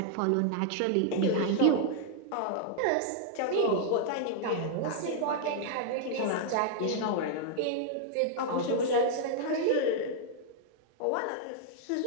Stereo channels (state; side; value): different; both; correlation -0.01